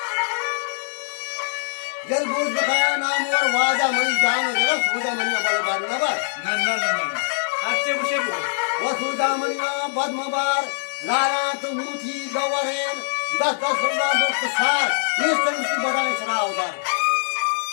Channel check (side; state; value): right; silent; digital silence